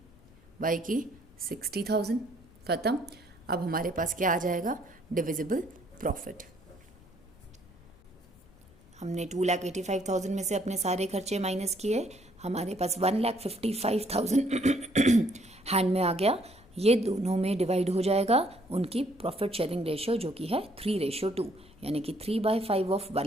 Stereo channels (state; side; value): noise; left; rumble, 26 dB below the sound